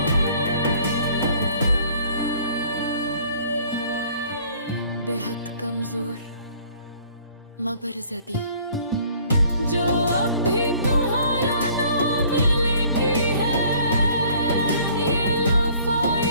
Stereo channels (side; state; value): both; inverted; correlation -0.55